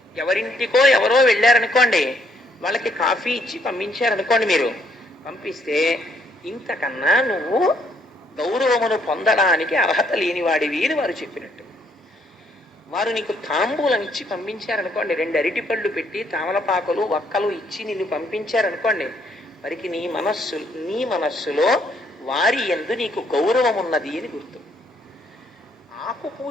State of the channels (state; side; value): normal; both; correlation 0.69